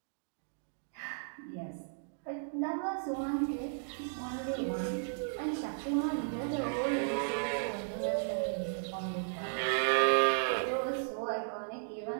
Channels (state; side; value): silent; left; digital silence